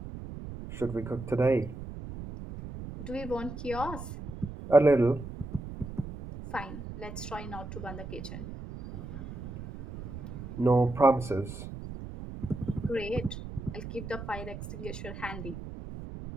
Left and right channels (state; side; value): noise; right; rumble, 10 dB below the sound